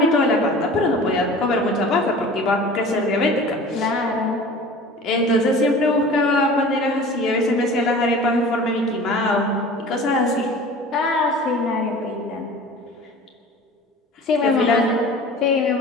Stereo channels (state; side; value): normal; both; correlation 0.41